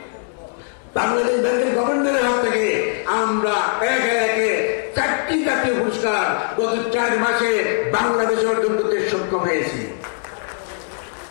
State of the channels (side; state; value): right; silent; 65 dB below the other